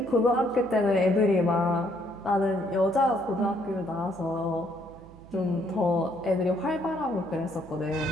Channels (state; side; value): noise; right; hum, 22 dB below the sound